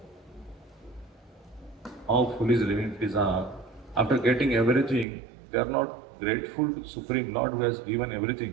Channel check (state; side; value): drops out; left; at 5.1 s